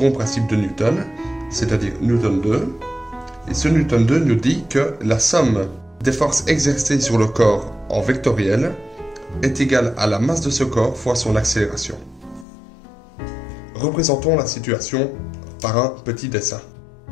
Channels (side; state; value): right; drops out; at 12.5 s